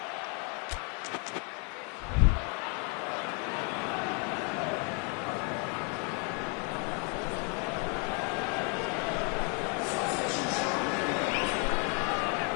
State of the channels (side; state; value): right; quieter; 35.6 dB